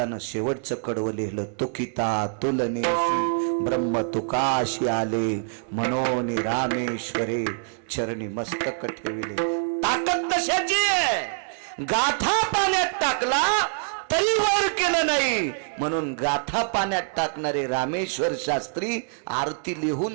शेवटचं कडवं लिहिलं, तुकिता तुलनेशी ब्रह्म तुकाशी आले, मनोनी रामेश्वरे चरणी मस्तक ठेविले. ताकद तशाची आहे. गाथा पाण्यात टाकला तरी वर केलं नाही, म्हणून गाथा पाण्यात टाकणारे रामेश्वर शास्त्री आरती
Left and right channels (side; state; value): left; silent; 59 dB below the other